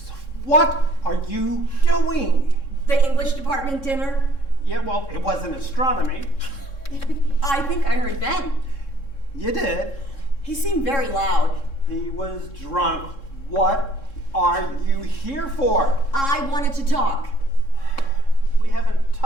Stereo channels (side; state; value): right; late; 3.7 ms